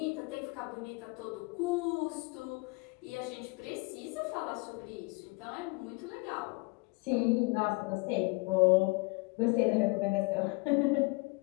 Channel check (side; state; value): right; quieter; 27.8 dB